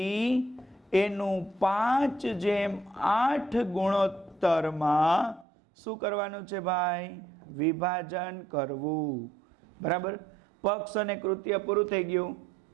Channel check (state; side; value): drops out; left; at 5.5 s